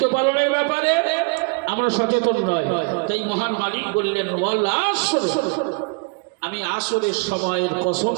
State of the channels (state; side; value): quieter; left; 34.3 dB